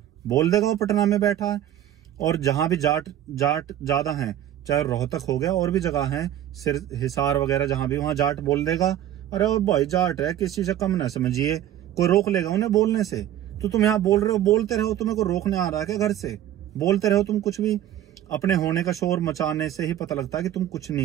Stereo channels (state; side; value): quieter; left; 11.8 dB